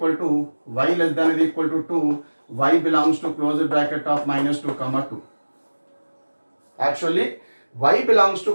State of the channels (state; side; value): inverted; both; correlation -1.00